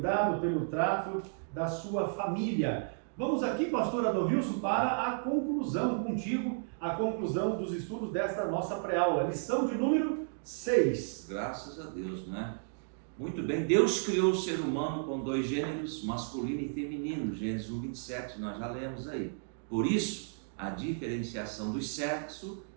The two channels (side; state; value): left; silent; digital silence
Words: pelo trato da sua família. Vamos aqui, pastor Adalvilson, para a conclusão contigo, a conclusão dos estudos desta nossa pré-aula. Lição de número 6. Graças a Deus, né? Muito bem, Deus criou o ser humano com 2 gêneros, masculino e feminino, Gênesis 1:27, nós já lemos aí. Por isso, a diferenciação do sexo